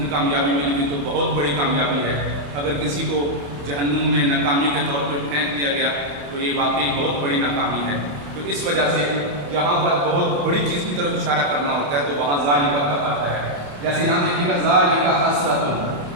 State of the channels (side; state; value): left; late; 28 ms